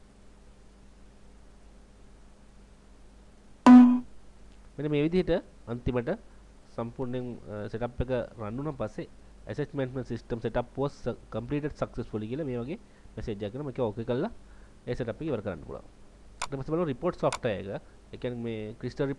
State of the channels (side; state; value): both; identical; correlation 1.00